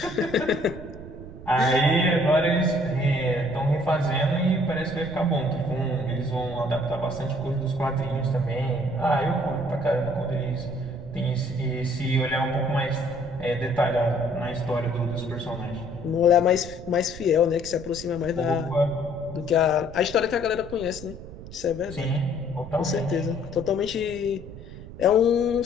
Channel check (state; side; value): noise; right; rumble, 14 dB below the sound